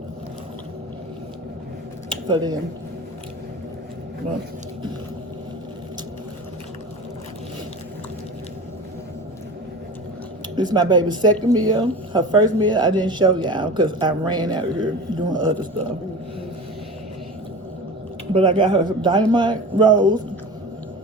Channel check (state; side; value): normal; both; correlation 0.33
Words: For them. But this is my baby's second meal. Her first meal I didn't show y'all because I ran out of here doing other stuff. But I got her some dynamite rolls.